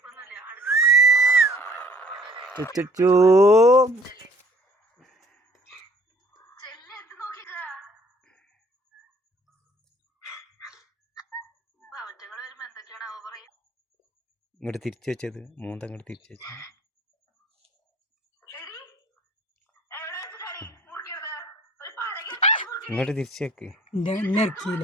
ചുച്ചു ഇങ്ങോട്ട് തിരിച്ചു വെച്ചത്, മൂന്തങ്ങോട്ട് തിരിച്ചു വെച്ചത്. ഇങ്ങോട്ട് തിരിച്ചു വെക്ക്.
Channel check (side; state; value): both; normal; correlation 0.56